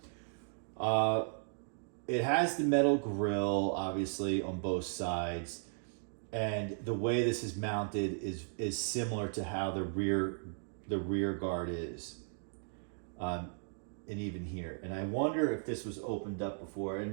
It has the metal grill, obviously, on both sides. And the way this is mounted is similar to how the rear guard is. And even here. And I wonder if this was opened up before.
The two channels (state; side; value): silent; left; digital silence